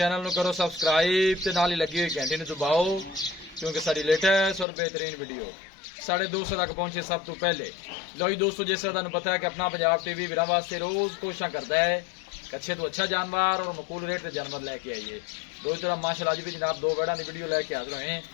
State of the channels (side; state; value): right; drops out; at 4.7 s